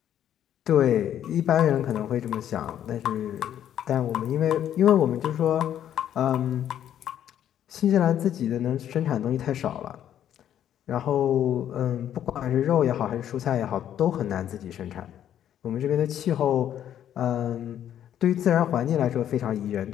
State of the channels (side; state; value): right; quieter; 10.5 dB